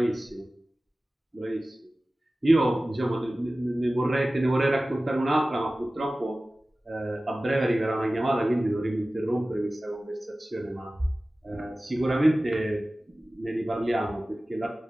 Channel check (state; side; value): normal; both; correlation 0.97